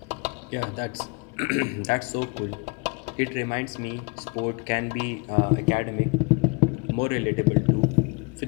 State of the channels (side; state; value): right; quieter; 30.3 dB